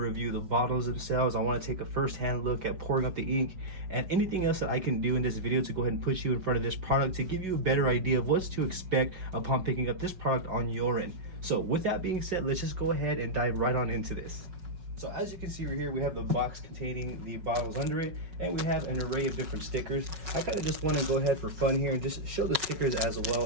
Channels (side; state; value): left; late; 5.6 ms